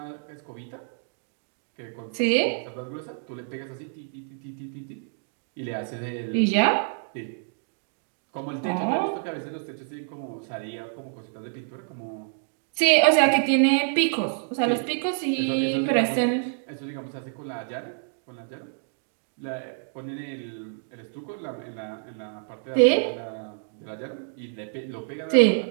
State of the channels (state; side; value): silent; left; digital silence